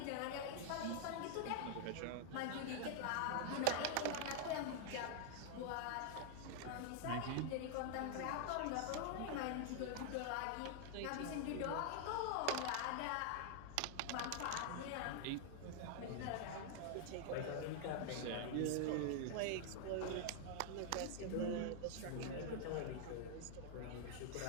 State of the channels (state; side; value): different; both; correlation 0.00